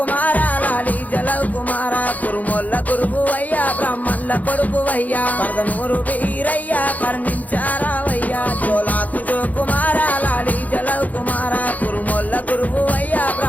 లాలి జలవ్ కుమార కురుమొల్ల గురువయ్యా బ్రాహ్మణుల కొడుకువయ్యా పరదనూరు వీరయ్యా కర్ణించారావయ్యా జోలాకు జో కుమార లాలి జలవ్ కుమార కురుమొల్ల గురువయ్యా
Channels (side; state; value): right; late; 0.077 ms